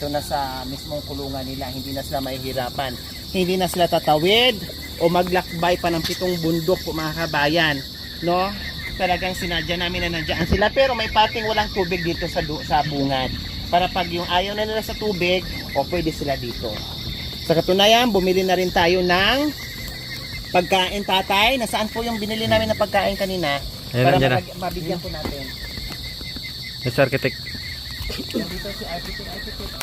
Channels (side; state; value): both; identical; correlation 1.00